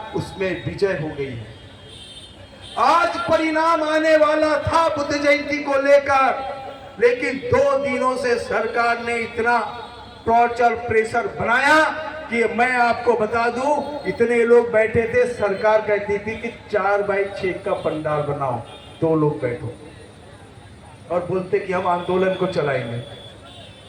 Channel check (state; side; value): identical; both; correlation 1.00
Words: उसमें विजय हो गई है। आज परिणाम आने वाला था बुद्ध जयंती को लेकर, लेकिन 2 दिनों से सरकार ने इतना टॉर्चर प्रेशर बनाया कि मैं आपको बता दूं, इतने लोग बैठे थे, सरकार कहती थी कि 4x6 का पंडाल बनाओ, 2 लोग बैठो, और बोलते कि हम आंदोलन को चलाएंगे।